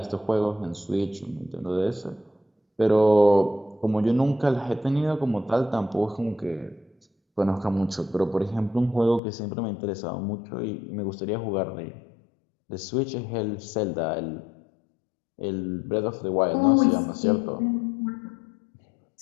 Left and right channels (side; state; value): right; drops out; at 9.2 s